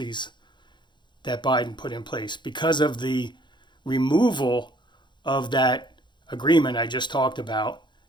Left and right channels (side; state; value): right; late; 0.22 ms